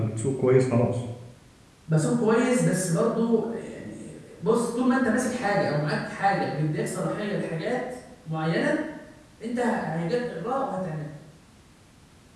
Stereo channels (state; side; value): identical; both; correlation 1.00